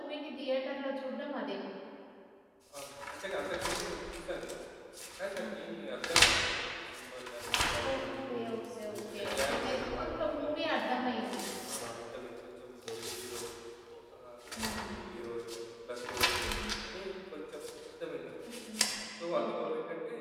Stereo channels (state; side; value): identical; both; correlation 1.00